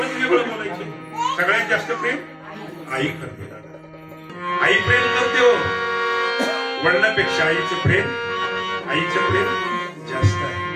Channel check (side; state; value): both; identical; correlation 1.00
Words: वेगळं बोलायचे. सगळ्यात जास्त प्रेम आई करते. आई प्रेम करते हो, वडिलांपेक्षा आईचं प्रेम जास्त